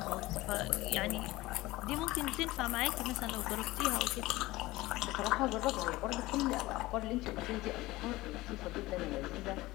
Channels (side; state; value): right; quieter; 19.0 dB